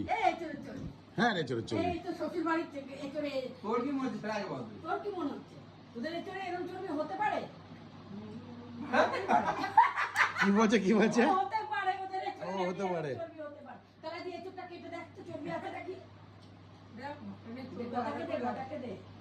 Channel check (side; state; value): both; identical; correlation 1.00